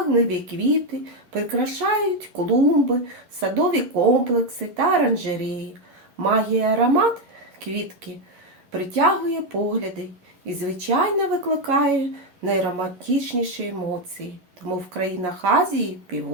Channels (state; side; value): late; left; 11 ms